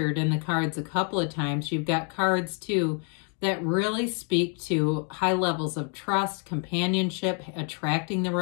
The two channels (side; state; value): right; quieter; 37.8 dB